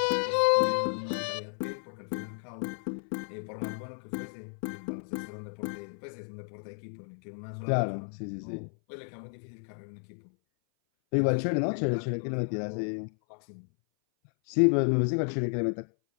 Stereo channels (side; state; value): right; silent; 57 dB below the other